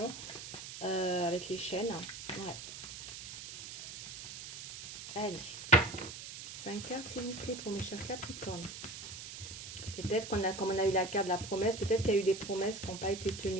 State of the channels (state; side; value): noise; right; hiss, 10 dB below the sound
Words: avec les chaînes. Ouais. Allez. 5 cartes, s'il vous plaît, pour mes chers Capricornes. Peut-être qu'on a, comme on a eu la carte de la promesse, peut-être qu'il y a eu des promesses qui n'ont pas été